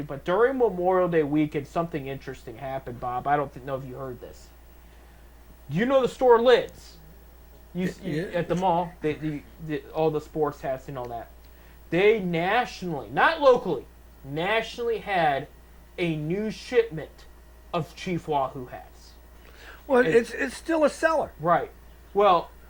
but during Memorial Day weekend, something interesting happened, Bob. I don't know if you heard this. You know the store Lids, at the mall, all the sports hats and all that. They nationally, not locally, nationally had a new shipment of Chief Wahoo hats. Well, it's still a seller. Right. Well,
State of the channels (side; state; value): both; identical; correlation 1.00